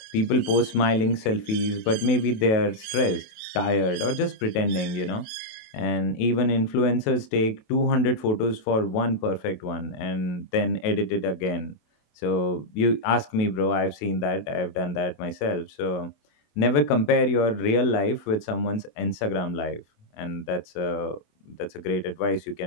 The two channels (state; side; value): late; right; 28 ms